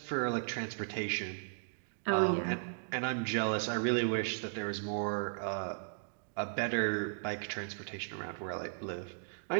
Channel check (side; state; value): left; silent; digital silence